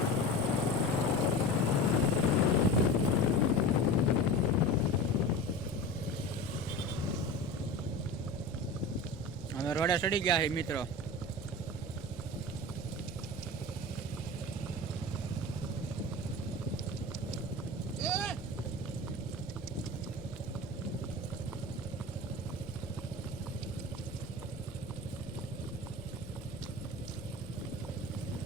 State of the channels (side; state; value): left; noise; rumble, 14 dB below the sound